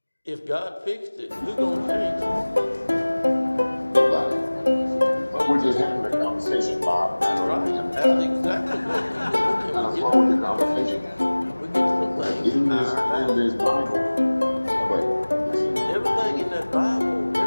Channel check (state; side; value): inverted; both; correlation -1.00